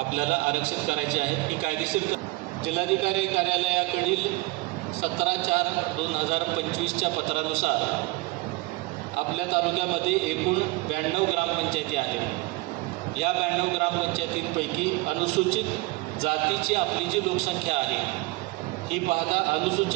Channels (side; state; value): left; quieter; 21.9 dB